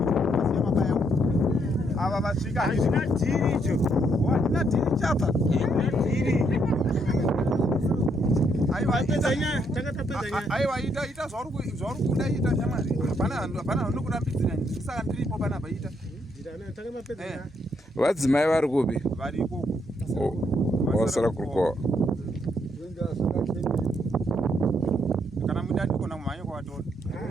chomunhu masiya mabaya ava vasvika hazvina dhiri icho handina dhiri chapa aiwa ita zvauri kuda ita shamari hapana nokurambidzira saka ndiripo panapa ita Vadzimai vari kupi? vari ikoko Vasara kurukova. kana muda andikona kumhanya kwavatora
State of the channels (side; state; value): both; normal; correlation 0.74